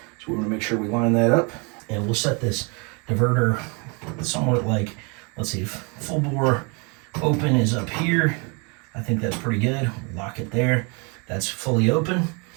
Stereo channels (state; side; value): quieter; left; 32.3 dB